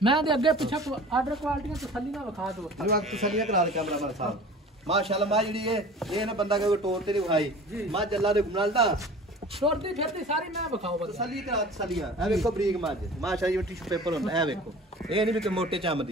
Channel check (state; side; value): normal; both; correlation 0.42